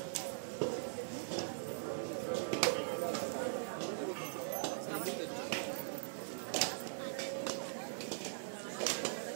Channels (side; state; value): left; silent; digital silence